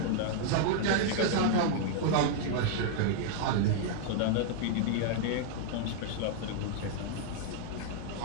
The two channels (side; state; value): both; different; correlation 0.00